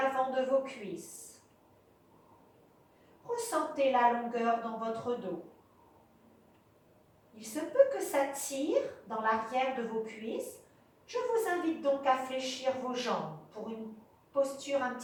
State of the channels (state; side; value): identical; both; correlation 1.00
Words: de vos cuisses. Ressentez la longueur dans votre dos. Il se peut que ça tire dans l'arrière de vos cuisses. Je vous invite donc à fléchir vos jambes pour une posture un